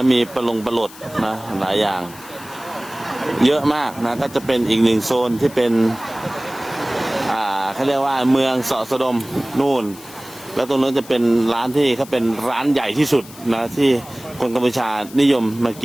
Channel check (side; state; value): left; noise; hiss, 19 dB below the sound